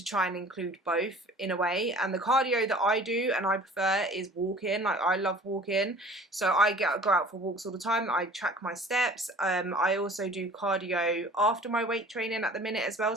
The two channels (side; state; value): both; normal; correlation 0.47